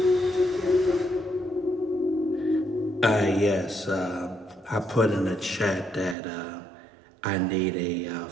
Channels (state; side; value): drops out; left; at 6.2 s